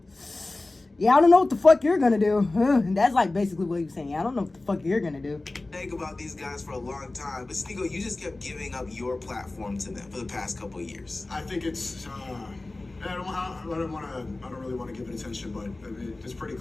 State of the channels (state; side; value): quieter; right; 3.0 dB